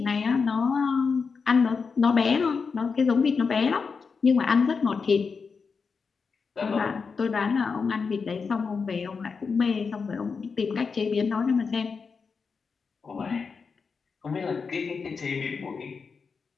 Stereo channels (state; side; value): quieter; right; 5.2 dB